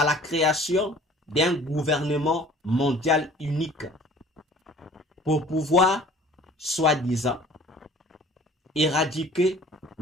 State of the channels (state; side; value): normal; both; correlation 0.50